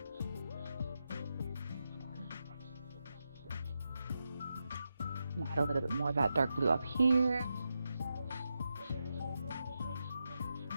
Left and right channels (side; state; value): both; inverted; correlation -0.87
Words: And add a little bit more of that dark blue up here.